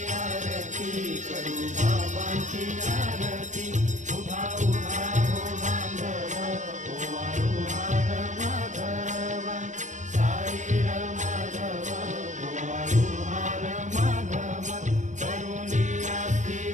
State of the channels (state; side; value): late; left; 0.35 ms